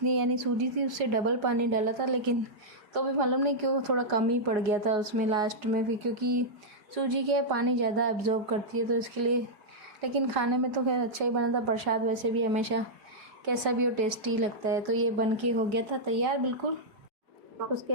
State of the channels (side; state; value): left; late; 4.9 ms